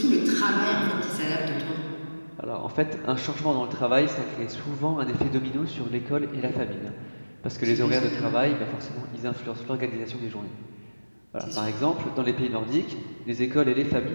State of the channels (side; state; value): both; inverted; correlation -1.00